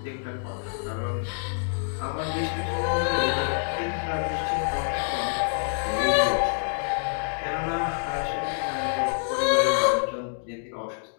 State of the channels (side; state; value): right; silent; digital silence